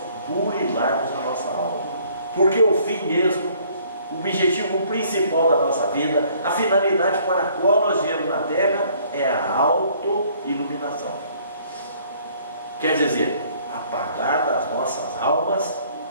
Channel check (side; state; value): both; inverted; correlation -0.60